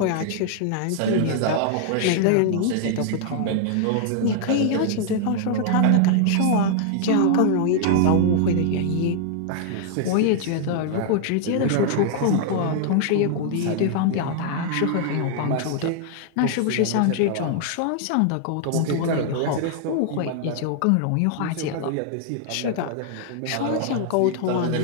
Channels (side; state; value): both; different; correlation 0.00